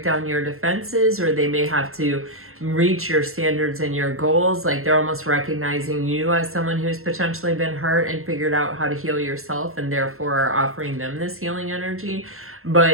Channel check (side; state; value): left; late; 0.62 ms